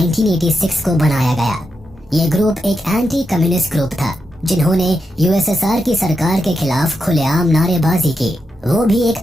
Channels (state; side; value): normal; both; correlation 0.86